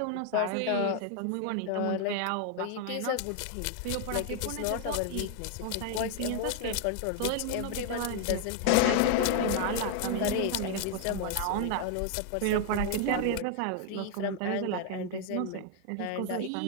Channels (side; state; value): both; different; correlation 0.00